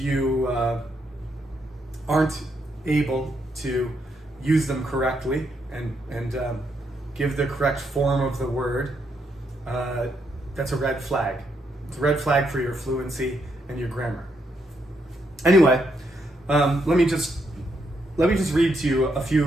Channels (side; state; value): both; normal; correlation 0.78